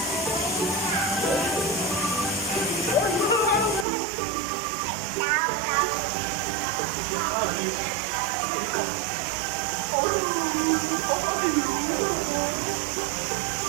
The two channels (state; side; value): drops out; left; at 3.9 s